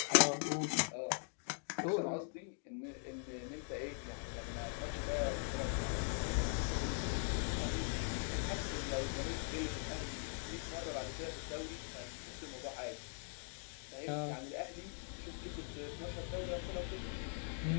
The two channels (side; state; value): right; silent; 50 dB below the other